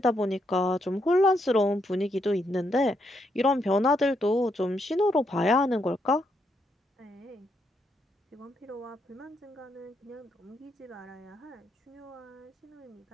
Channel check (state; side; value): normal; both; correlation 0.78